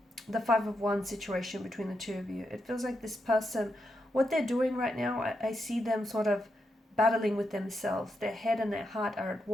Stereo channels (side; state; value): both; normal; correlation 0.84